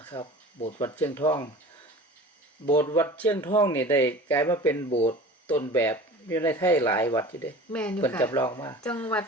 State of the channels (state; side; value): normal; both; correlation 0.40